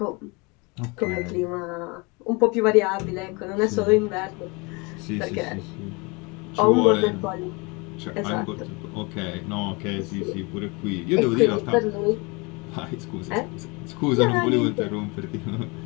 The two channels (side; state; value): right; quieter; 28.1 dB